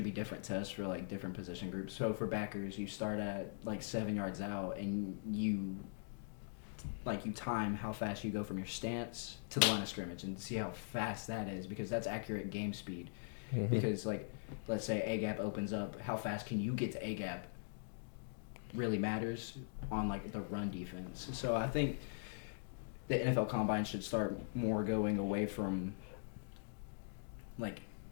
be different tests for like different position groups. So for backers, you start at like 7 yards out, and you time how fast you go from your stance to the line of scrimmage, and see how fast that is because that's accurate game speed. Mhm. Because like let's say A gap opens up, how fast can you get to A gap? Really matters on like the run defense. So I think the NFL Combine should start more going away from like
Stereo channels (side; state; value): right; silent; digital silence